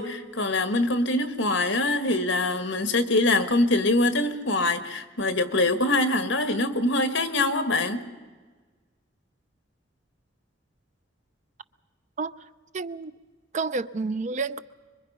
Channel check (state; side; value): normal; both; correlation 0.24